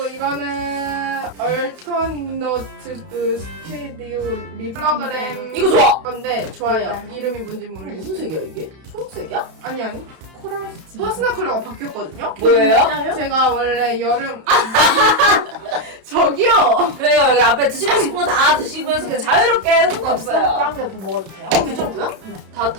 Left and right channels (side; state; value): left; late; 32 ms